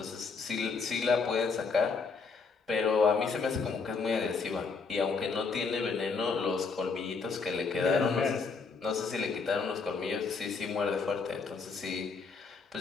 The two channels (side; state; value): right; quieter; 4.8 dB